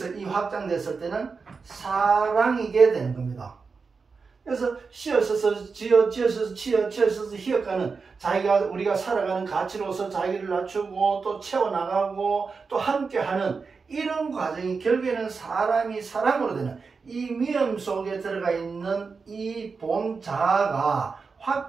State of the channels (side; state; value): left; quieter; 4.9 dB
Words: 이 확장됐을 때는 사랑이게 되는 겁니다. 그래서 쉬어서서 지어서서 치어서서 히읗가는 자기가 우리가 살아가는 가치로서 자기를 낮추고 또 채워나가고 또 함께하는 이런 과정이 결국에는 사람이 사랑으로 되는 이 미음 속에 들어가 있는 이 본 자아가